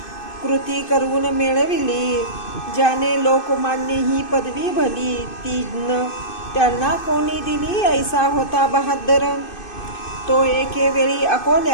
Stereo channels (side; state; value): right; late; 2.6 ms